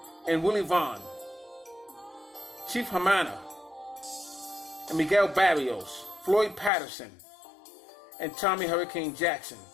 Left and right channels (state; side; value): drops out; right; at 6.7 s